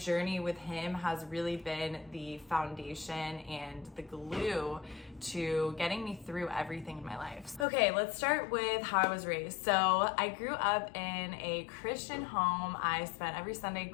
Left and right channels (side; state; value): right; drops out; at 7.7 s